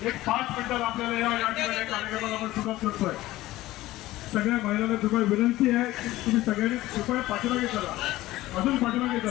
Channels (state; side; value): quieter; right; 16.7 dB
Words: एक 5 मिनिटात आपल्याला या ठिकाणी कार्यक्रमाला आपण सुरुवात करतोय. सगळ्या महिलांना कृपया विनंती आहे की तुम्ही सगळ्यांनी कृपया पाठीमागे चला, अजून पाठीमागे